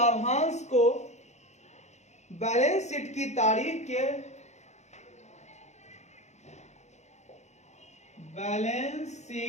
बैलेंस शीट की तारीख के बैलेंस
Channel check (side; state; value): right; late; 0.33 ms